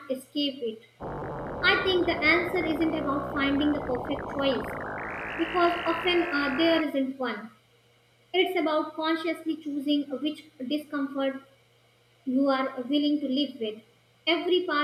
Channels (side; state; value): both; identical; correlation 1.00